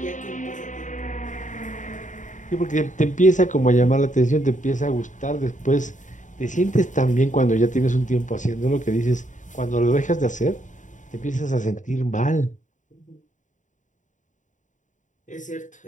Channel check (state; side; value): late; right; 0.36 ms